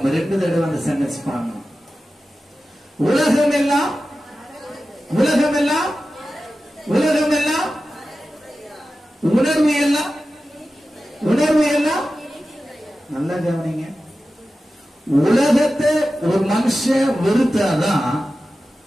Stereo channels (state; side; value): normal; both; correlation 0.94